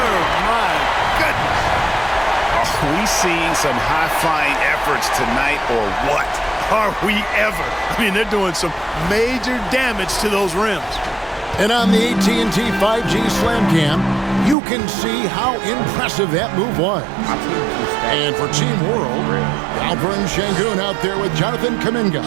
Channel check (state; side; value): drops out; left; at 14.6 s